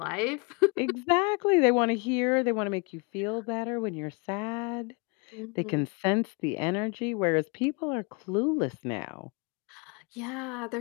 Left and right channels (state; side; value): quieter; right; 31.6 dB